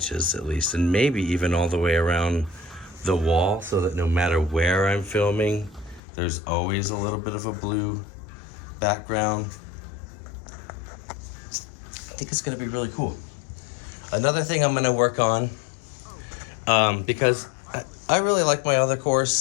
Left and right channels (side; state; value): right; drops out; at 6.0 s